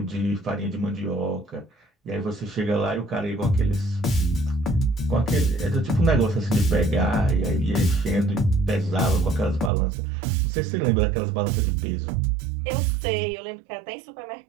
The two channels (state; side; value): drops out; left; at 9.7 s